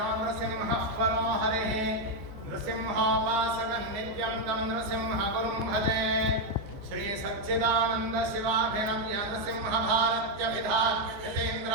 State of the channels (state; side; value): late; left; 14 ms